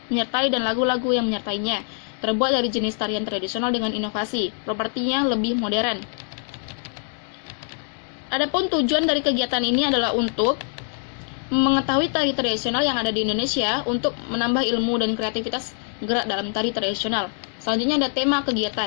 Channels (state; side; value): silent; right; 56 dB below the other